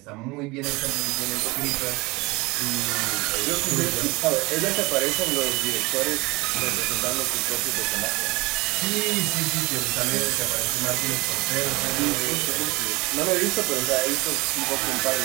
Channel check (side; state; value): left; quieter; 23.8 dB